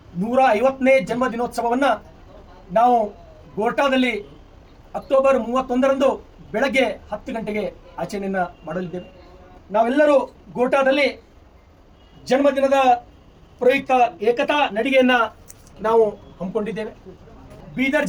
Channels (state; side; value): identical; both; correlation 1.00